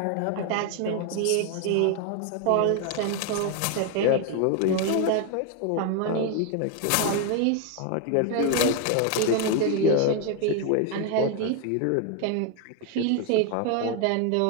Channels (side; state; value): both; different; correlation 0.01